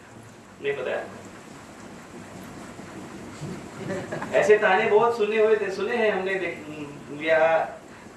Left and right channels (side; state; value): both; identical; correlation 1.00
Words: नहीं पता है? ऐसे ताने बहुत सुने हैं हमने, या